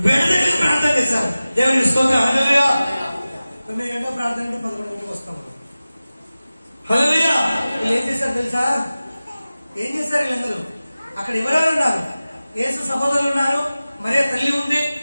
వెడదెగ ప్రార్థన చేశారు. దేవుని స్తోత్రం. హల్లెలూయా. 9 గంటల ప్రార్థన అంటే 11 గంటలకు వస్తాం. హల్లెలూయా. వీళ్ళు ఏం చేశారు తెలుసా? ఏం చేశారు వీళ్ళందరూ? అక్కడ ఎవరెవరు ఉన్నారు? యేసు సహోదరులు ఉన్నారు, మరియ తల్లి ఉంది,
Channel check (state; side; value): inverted; both; correlation -0.97